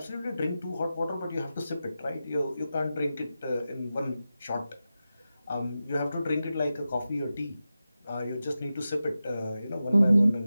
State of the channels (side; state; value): both; inverted; correlation -0.93